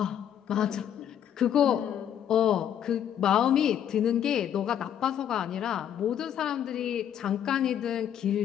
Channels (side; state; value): right; quieter; 9.7 dB